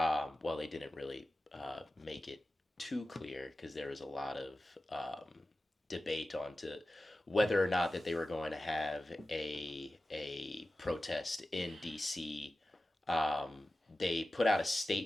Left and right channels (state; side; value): normal; both; correlation 0.94